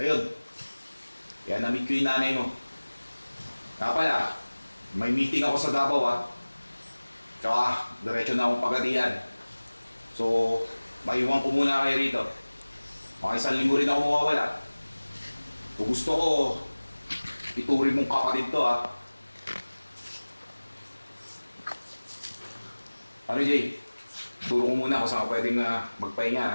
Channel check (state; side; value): inverted; both; correlation -1.00